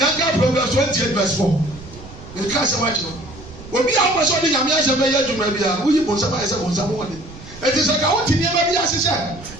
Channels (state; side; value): noise; right; rumble, 17 dB below the sound